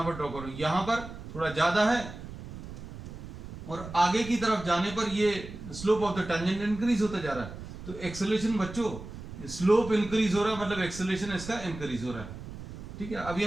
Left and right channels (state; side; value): noise; right; rumble, 12 dB below the sound